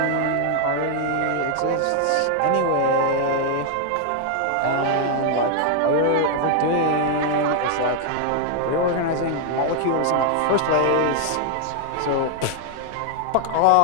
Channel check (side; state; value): both; different; correlation 0.00